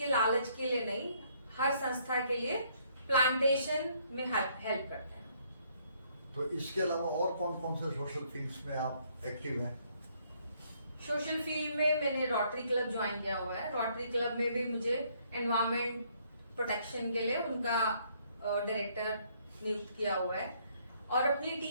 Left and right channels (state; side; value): inverted; both; correlation -0.67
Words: लालच के लिए नहीं, हर संस्था के लिए प्लांटेशन में हेल्प करते हैं। तो इसके अलावा और कौन कौन से सोशल फील्ड्स में आप एक्टिव हैं? सोशल फील्ड में मैंने रोटरी क्लब ज्वाइन किया हुआ है। रोटरी क्लब में भी मुझे एनवायरमेंट प्रोटेक्शन के लिए उनका डायरेक्टर नियुक्त किया हुआ है। और अपनी